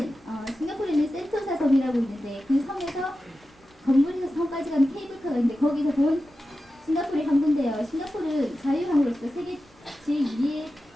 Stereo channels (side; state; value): both; normal; correlation 0.92